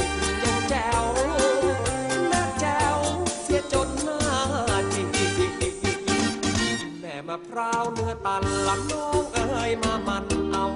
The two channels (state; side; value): identical; both; correlation 1.00